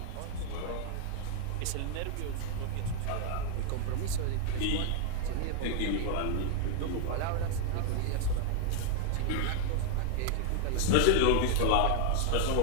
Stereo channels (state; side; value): different; both; correlation 0.00